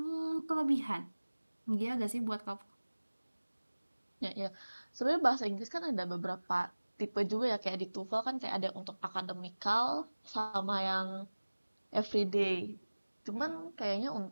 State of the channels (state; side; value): inverted; both; correlation -1.00